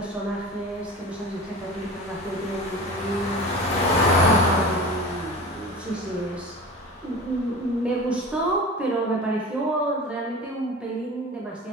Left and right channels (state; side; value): normal; both; correlation 0.34